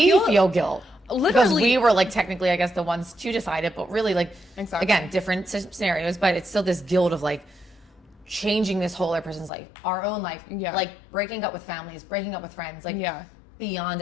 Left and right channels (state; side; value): drops out; right; at 9.5 s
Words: feel guilt. Literally. Because we were like technically, I guess, the ones to decide it, but really like, again, different scenarios, but it's still this guilt of like changing this whole other person's life, our own life, like breaking up with families, breaking up with friends, like beyond